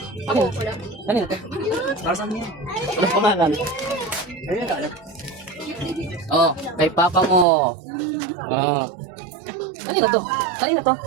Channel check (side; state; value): left; drops out; at 7.5 s